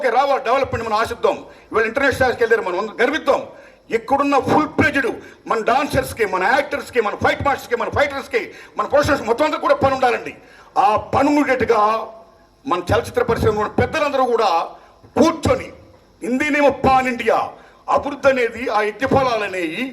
రావాలి, డెవలప్మెంట్ మనం ఆశిద్దాం. ఇవాళ ఇంటర్నేషనల్కి వెళ్ళారు, మనం గర్విద్దాం. ఇక్కడున్న ఫుల్ ప్లేజ్డ్ మన డాన్సర్స్కి, మన యాక్టర్స్కి, మన ఫైట్ మాస్టర్స్కి, మన ఫైటర్స్కి, మన ప్రొఫెషనల్స్ మొత్తం అంతా కూడా పని ఉండాలండి. ఆ పని ఉండేట్టుగా మన చలచిత్ర పరిశ్రమ పెద్దలందరూ కూడా కూర్చొని హిందీనేమో పాన్ ఇండియా అభివృద్ధి అనేది, ఆ యజ్ఞఫలాలు అనేవి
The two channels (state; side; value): identical; both; correlation 1.00